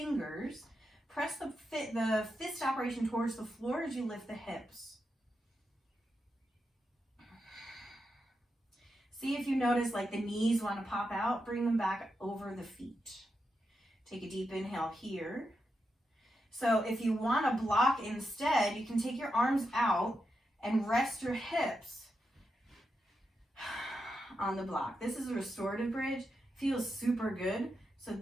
Press the fist operation towards the floor as you lift the hips. See if you notice like the knees want to pop out. Bring them back over the feet. Take a deep inhale here. So if you want to block instead, you can take your arms out and rest your hips on the block. This is a restorative bridge. Feels super good. So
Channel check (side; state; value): both; normal; correlation 0.86